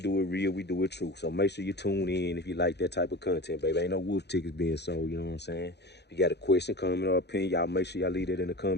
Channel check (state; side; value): late; right; 0.49 ms